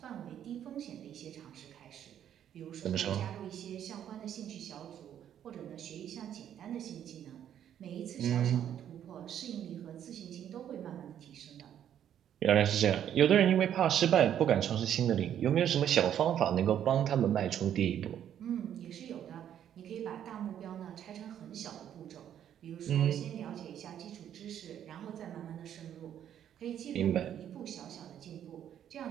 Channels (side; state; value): left; quieter; 10.0 dB